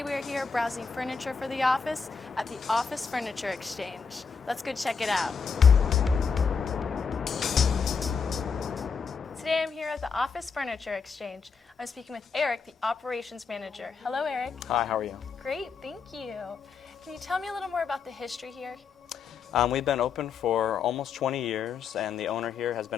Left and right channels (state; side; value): quieter; right; 5.7 dB